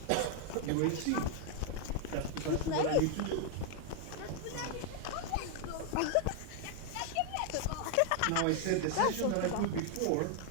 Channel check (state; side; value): different; both; correlation 0.00